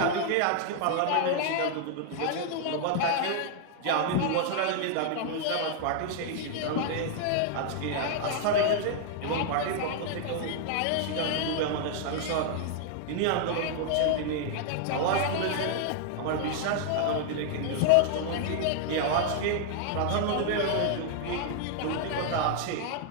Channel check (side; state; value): both; different; correlation 0.00